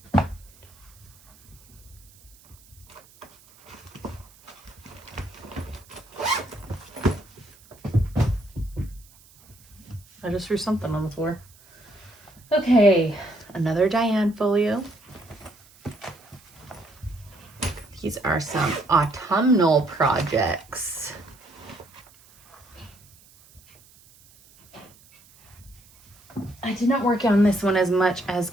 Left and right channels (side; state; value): right; noise; hiss, 26 dB below the sound